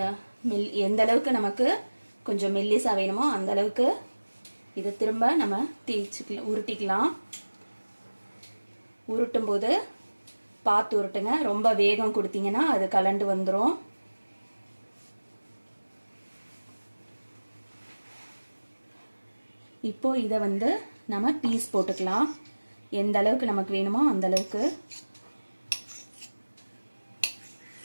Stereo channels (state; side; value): inverted; both; correlation -1.00